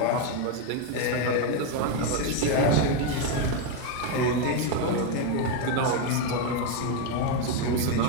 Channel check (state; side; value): different; both; correlation 0.02